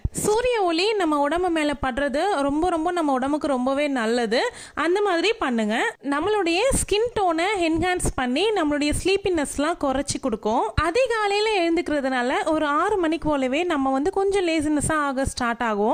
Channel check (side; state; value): both; identical; correlation 1.00